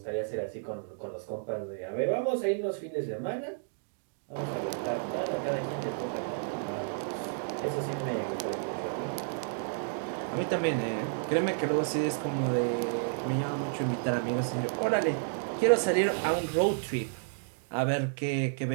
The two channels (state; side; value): silent; left; digital silence